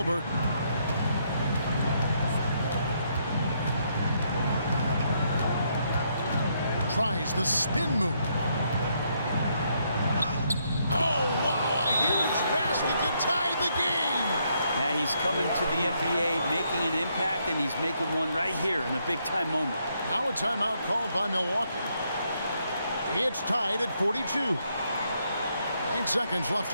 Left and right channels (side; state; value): both; inverted; correlation -0.74